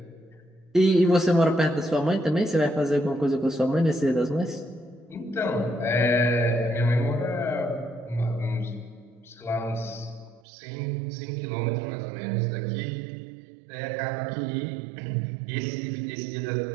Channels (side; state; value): left; drops out; at 10.4 s